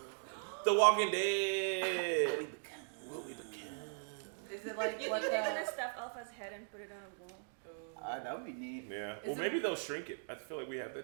The Walking Dead. What we become. Is it like You what think they're the? gonna stuff Alpha's head and put it on a wall? That would be neat. Yeah. Is Well, it- maybe they'll shrink it. I feel like we have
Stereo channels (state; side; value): silent; left; digital silence